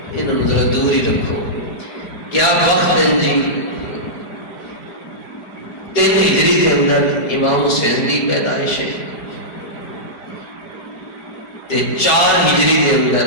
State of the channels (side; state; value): right; late; 5.3 ms